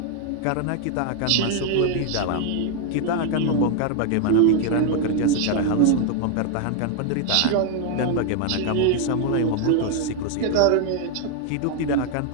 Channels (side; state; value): both; different; correlation 0.00